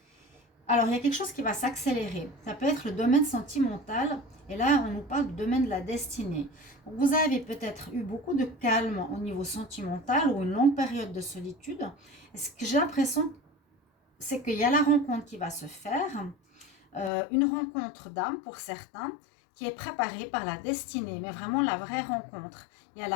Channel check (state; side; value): drops out; right; at 17.1 s